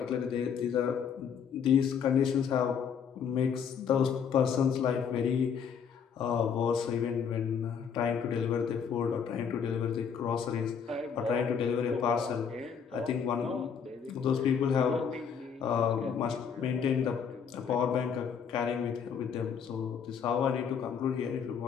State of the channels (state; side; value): quieter; right; 7.1 dB